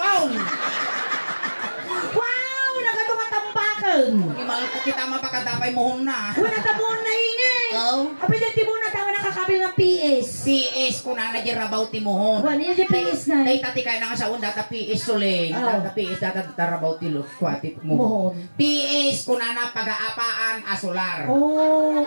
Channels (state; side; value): inverted; both; correlation -1.00